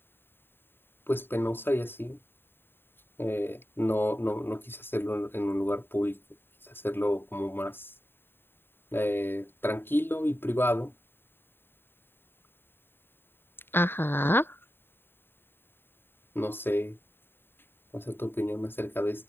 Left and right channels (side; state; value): right; late; 0.10 ms